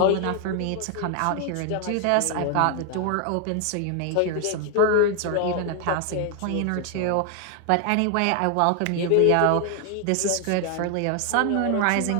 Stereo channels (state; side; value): different; both; correlation 0.00